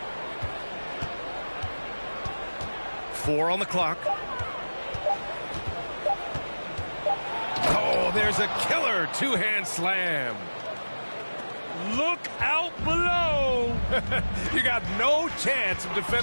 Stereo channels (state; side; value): inverted; both; correlation -1.00